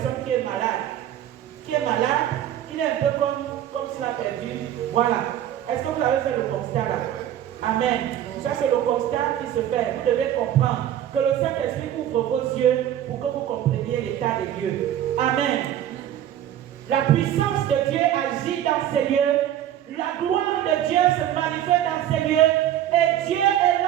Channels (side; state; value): left; quieter; 11.4 dB